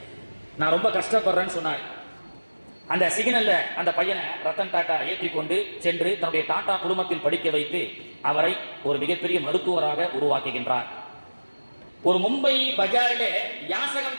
நான் ரொம்ப கஷ்டப்படுறேன்னு சொன்னார். அந்த சிக்னல்ல அந்த பையனை ரத்தன் டாடா ஏற்றிக்கொண்டு சென்று தன்னுடைய டாடா குடும்பத்தில் படிக்க வைத்து அவரை ஒரு மிகப்பெரிய மருத்துவராக உருவாக்குகின்றார். ஒரு மும்பை பஜாரிலே யாசகம்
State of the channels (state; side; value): inverted; both; correlation -1.00